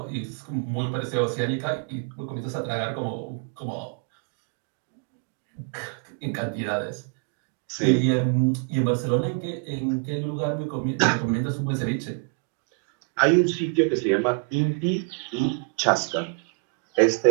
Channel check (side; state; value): left; quieter; 35.9 dB